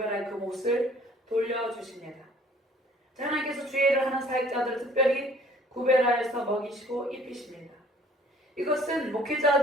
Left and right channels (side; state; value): both; normal; correlation 0.55